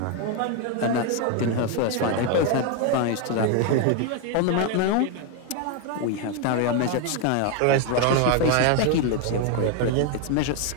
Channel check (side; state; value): both; different; correlation 0.01